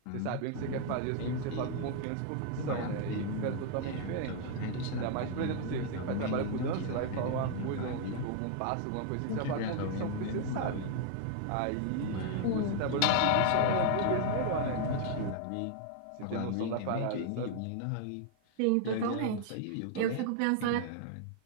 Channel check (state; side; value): different; both; correlation 0.00